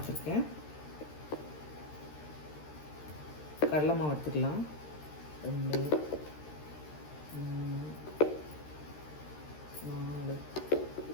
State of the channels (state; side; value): late; right; 13 ms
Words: கடலை மாவு எடுத்துக்கலாம். 2 3 4